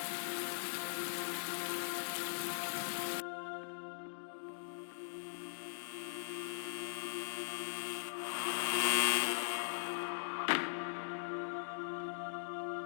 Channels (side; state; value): right; silent; digital silence